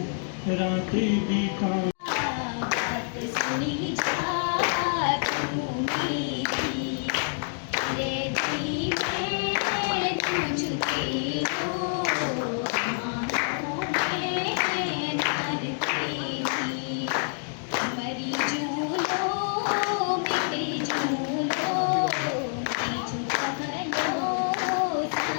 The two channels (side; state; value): right; silent; digital silence